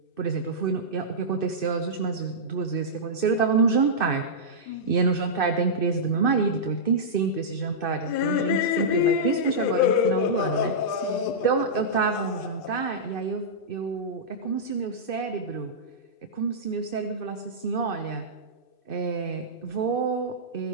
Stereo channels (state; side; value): late; right; 2.6 ms